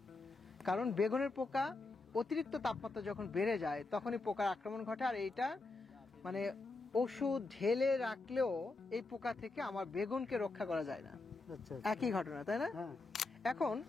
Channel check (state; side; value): quieter; right; 3.4 dB